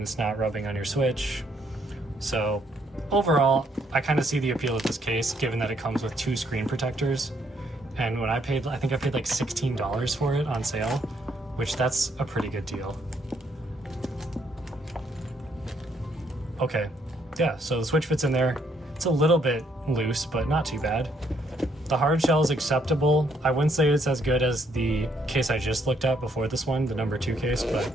it's not rubbing on your Switch. So overall, I kind of see the appeal of this case, given that it comes with 2 screen protectors. And when I think I paid like $16 for it on sale, which that's a pretty good deal. Okay, yeah, so the Switch fits in there. It's a little bit loose, but not too bad. The hard shell is acceptable. I wouldn't say it's as good as the case I just looked at before this one, the #2 case, but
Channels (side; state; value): both; normal; correlation 0.71